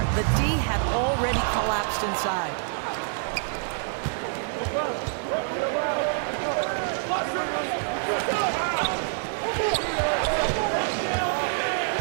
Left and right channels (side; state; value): left; silent; digital silence